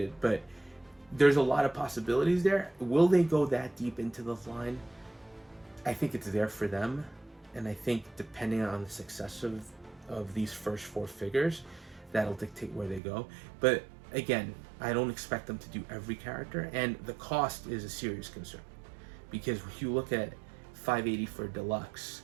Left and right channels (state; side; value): drops out; left; at 13.0 s